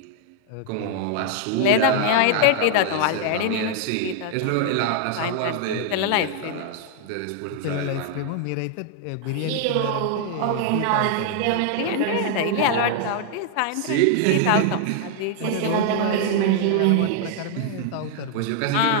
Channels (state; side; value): different; both; correlation 0.00